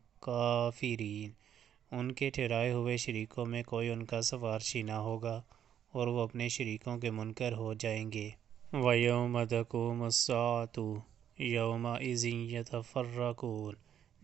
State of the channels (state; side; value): quieter; left; 9.6 dB